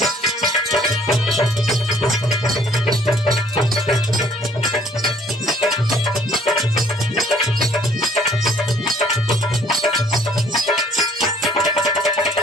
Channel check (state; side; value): normal; both; correlation 0.60